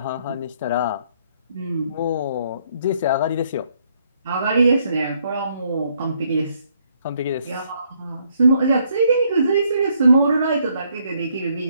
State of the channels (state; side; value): inverted; both; correlation -0.70